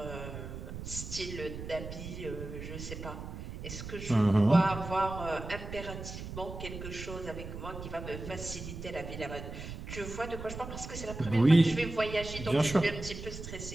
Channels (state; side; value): noise; right; rumble, 9 dB below the sound